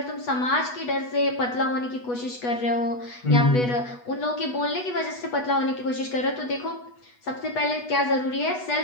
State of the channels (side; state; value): right; late; 8.2 ms